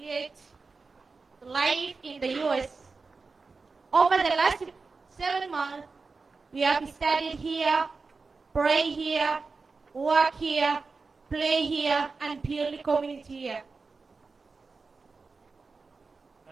life in the U.S. Over the last 7 months, We have studied here, pray here, work here, play here, and build community here.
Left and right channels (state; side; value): quieter; left; 4.3 dB